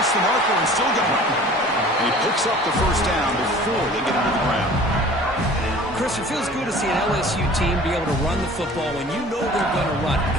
the marker and still going. And he picks up the 1st down before they get into the ground. Chris, it feels good to see an LSU team be able to run the football when you know they're going to run. I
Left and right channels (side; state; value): both; normal; correlation 0.46